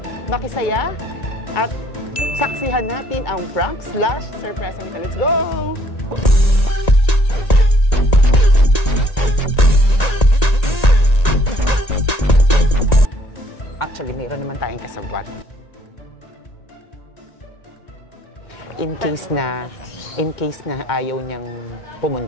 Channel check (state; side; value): late; right; 1.9 ms